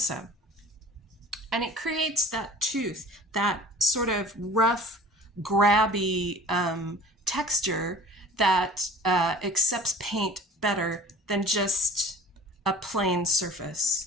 And it creates that tooth, that sort of rough, grabby texture that accepts paint better than just a plain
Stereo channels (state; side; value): normal; both; correlation 0.45